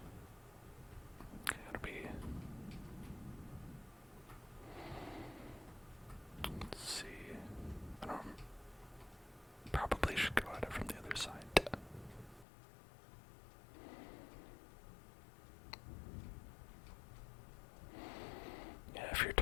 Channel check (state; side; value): drops out; right; at 12.5 s